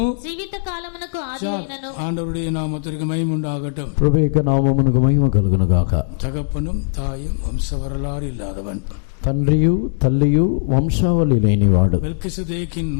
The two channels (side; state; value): right; silent; 66 dB below the other